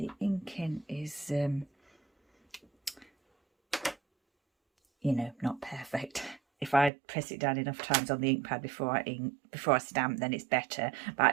inking is you know, not perfect. If I press it down enough times on the ink pad before I stamp, then it's better. But I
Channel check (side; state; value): left; drops out; at 6.9 s